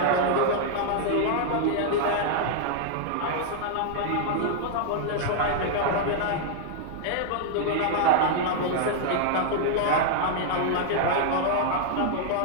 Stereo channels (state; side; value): different; both; correlation -0.01